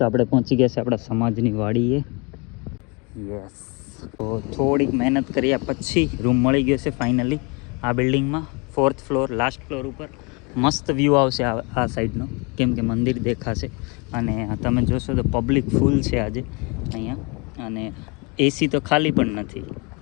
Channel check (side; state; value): right; quieter; 29.8 dB